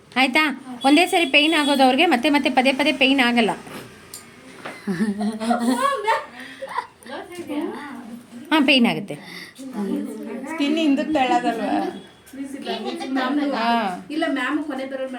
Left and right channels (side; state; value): both; identical; correlation 1.00